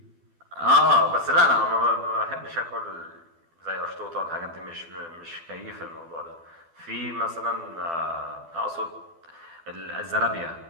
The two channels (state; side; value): late; left; 12 ms